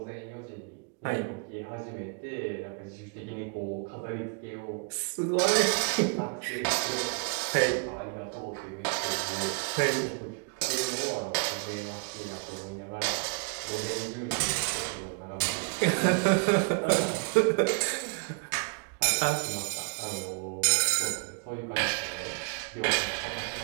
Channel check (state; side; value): quieter; left; 35.6 dB